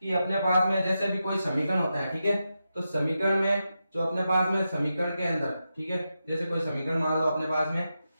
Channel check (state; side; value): inverted; both; correlation -0.89